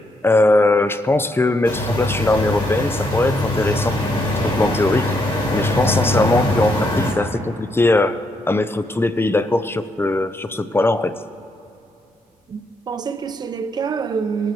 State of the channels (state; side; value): normal; both; correlation 0.76